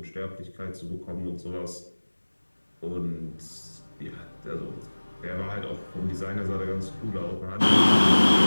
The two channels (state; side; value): inverted; both; correlation -1.00